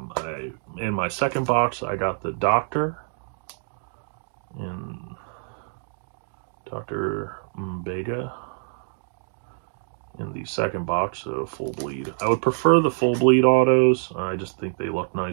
In my second box, I got the Doctor, in Dr. Mbega, in the second box, so full bleed. I would prefer the full bleed autos. I just think they look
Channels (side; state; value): left; silent; digital silence